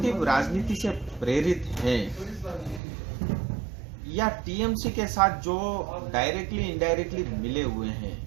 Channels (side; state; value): left; drops out; at 2.8 s